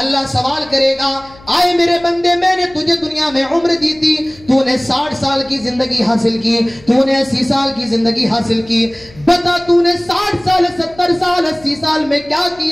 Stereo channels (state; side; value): noise; left; hum, 24 dB below the sound